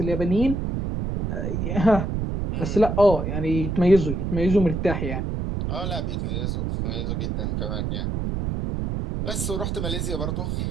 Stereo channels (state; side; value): noise; right; rumble, 2 dB below the sound